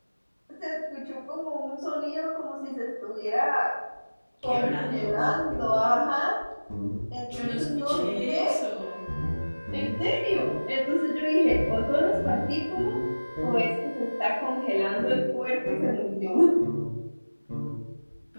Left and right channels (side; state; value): both; inverted; correlation -1.00